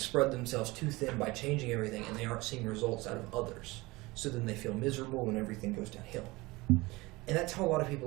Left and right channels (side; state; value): left; quieter; 22.1 dB